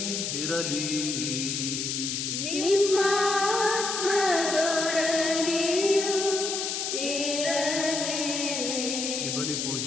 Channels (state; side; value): noise; left; hiss, 2 dB below the sound